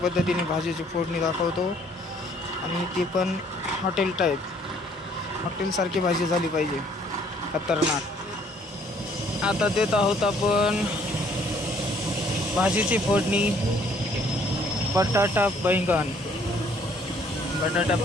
भाजीची फोडणी दाखवतो आणि ती पण हॉटेल टाईप, हॉटेलसारखी भाजी झाली पाहिजे, खतरनाक. आता देत आहोत आपण भाजीची फोडणी बटाटा बैंगन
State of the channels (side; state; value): both; normal; correlation 0.62